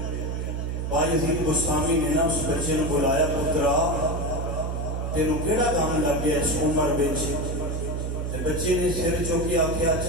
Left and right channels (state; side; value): noise; right; hum, 2 dB below the sound